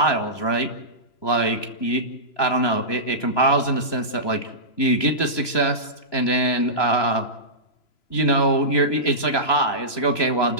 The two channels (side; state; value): right; late; 3.0 ms